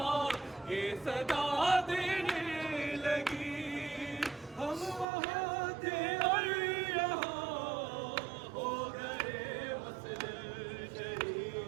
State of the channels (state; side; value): drops out; left; at 5.1 s